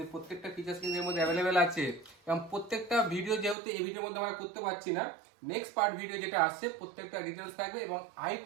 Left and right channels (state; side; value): drops out; left; at 3.6 s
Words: প্রত্যেকটা ফিচার্স কিন্তু এর মধ্যে অ্যাভেলেবেল আছে এবং প্রত্যেকটা ভিডিও যেহেতু এই ভিডিওর মধ্যে আমরা করতে পারছি না, নেক্সট পার্ট ভিডিও যেটা আসছে প্রত্যেকটা ডিটেলস থাকবে এবং